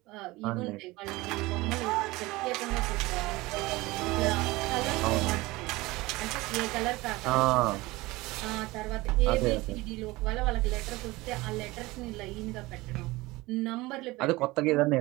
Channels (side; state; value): left; quieter; 20.8 dB